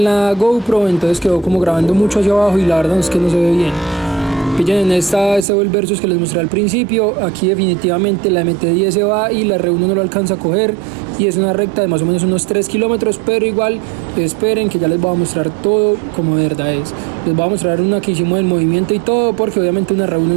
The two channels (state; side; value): drops out; left; at 5.5 s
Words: la GoPro, entonces quedó como grabando mucho hacia abajo y la verdad es que no se ve bien. Pillen en este Vol Versus que les mostré al principio. Aquí definitivamente la MT-10 se va y la R1 no lo alcanza a coger, y es una recta de más o menos unos 3 kilómetros, pero igual esperen que ya les voy a mostrar todo como de verdad es. Les voy a mostrar una que hicimos del movimiento y todo, porque obviamente una R1